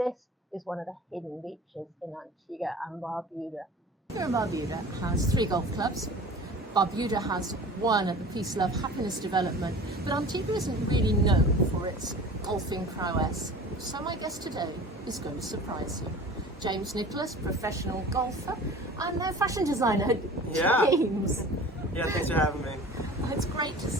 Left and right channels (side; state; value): both; normal; correlation 0.41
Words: is one of the hidden beaches in Antigua and Barbuda. Barbuda has 3 golf clubs. Barbuda has one at the Peace, Love, Happiness Development, but Antigua isn't really known for its golfing prowess. So my guest today is going to surprise you. James Nicholas, professional golfer and fashion designer. Yeah. James. Yeah, thanks for having me. It's great to